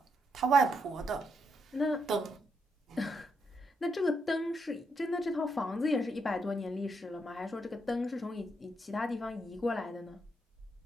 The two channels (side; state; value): both; normal; correlation 0.79